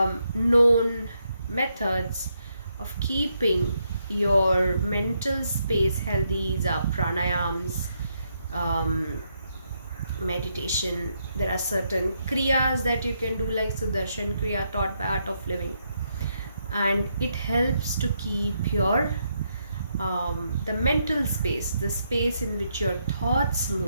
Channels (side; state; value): both; inverted; correlation -0.78